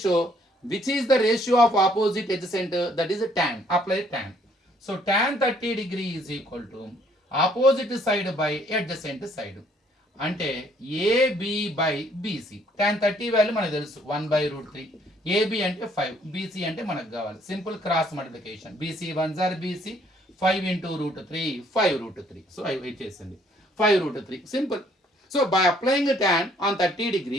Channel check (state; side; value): normal; both; correlation 0.64